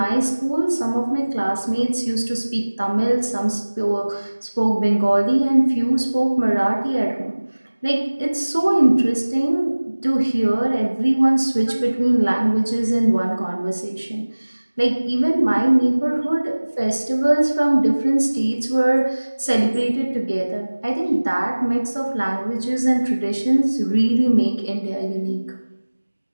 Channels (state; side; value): inverted; both; correlation -1.00